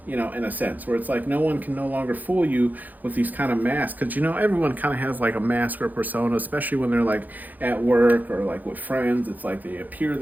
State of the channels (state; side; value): late; left; 0.083 ms